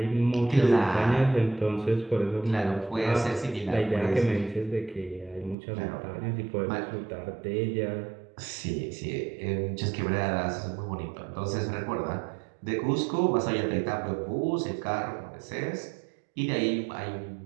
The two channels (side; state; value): left; drops out; at 5.6 s